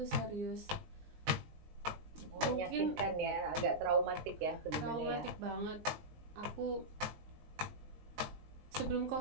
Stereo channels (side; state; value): left; late; 19 ms